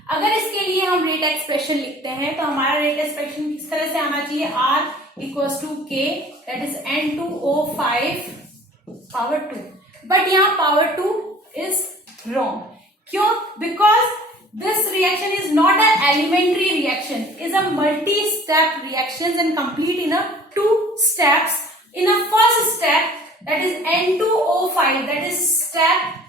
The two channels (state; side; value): normal; both; correlation 0.48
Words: अगर इसके लिए हम rate expression लिखते हैं तो हमारा रेट एक्सप्रेशन किस तरह से आना चाहिए, R equals to K, that is N2O5 power 2। But यहाँ पावर 2 इज रॉन्ग, क्यों? Because this reaction is not a elementary reaction, is a multi step reaction and complete in 2 steps. In a first step, that is N2O5, that is step